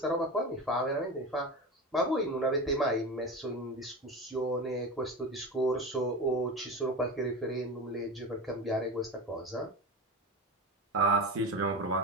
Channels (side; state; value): both; normal; correlation 0.26